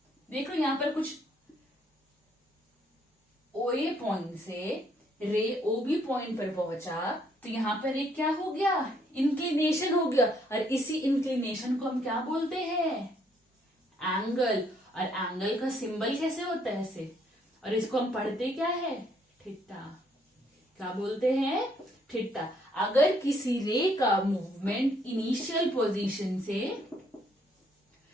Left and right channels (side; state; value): both; normal; correlation 0.68